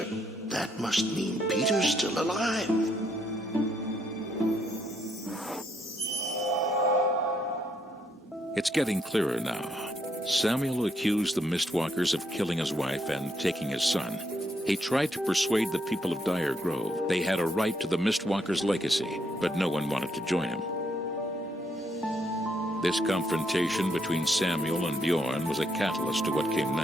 That must mean Peter's still alive. It's getting clearer now. Samuel accused the Mistwalkers of killing his wife and taking his son. He tried to persuade the people of Dire Grove they had a right to the Mistwalkers' legacy, but no one wanted to join him. This confrontation between Samuel and Bjorn was a catalyst to what came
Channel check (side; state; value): both; normal; correlation 0.74